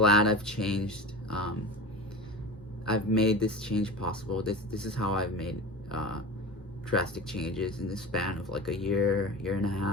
I've changed. I've made this change possible. This is how I've made drastic changes in the span of like a year and a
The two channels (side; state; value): both; normal; correlation 0.30